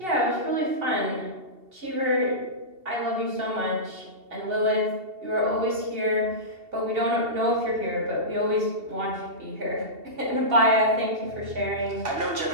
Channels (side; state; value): left; late; 2.7 ms